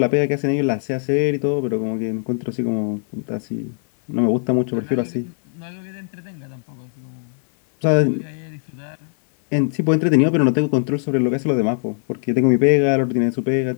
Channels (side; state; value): right; silent; 59 dB below the other